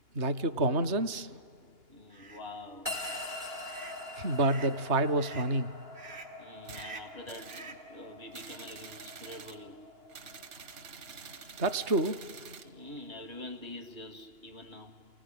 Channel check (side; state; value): left; late; 2.9 ms